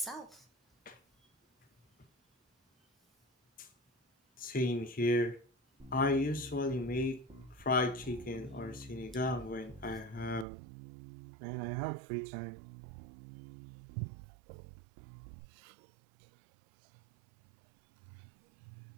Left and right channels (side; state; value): left; drops out; at 10.5 s